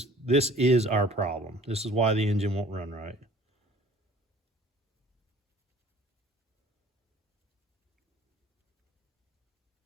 our problem. This is why the engine won't run right.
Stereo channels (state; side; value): normal; both; correlation 0.51